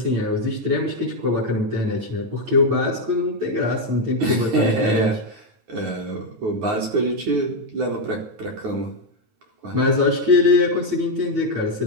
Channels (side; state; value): left; late; 9.4 ms